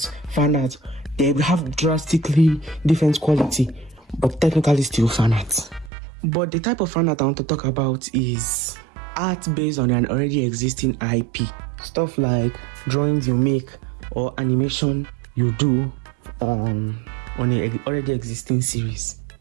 fanart. They have drastically different quality, but technically still fanart. But the type of fanart I want to talk about is art based on an already existing IP. Stuff like drawings you make or animation you do on an already existing series.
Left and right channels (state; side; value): drops out; left; at 5.9 s